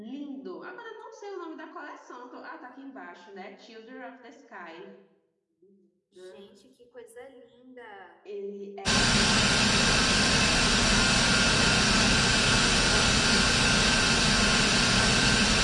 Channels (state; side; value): identical; both; correlation 1.00